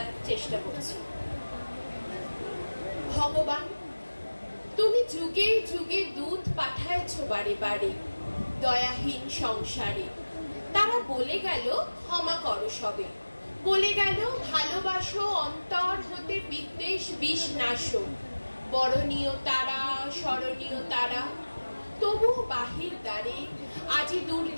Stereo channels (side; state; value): both; inverted; correlation -1.00